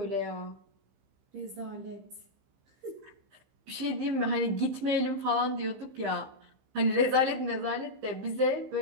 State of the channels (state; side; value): late; left; 15 ms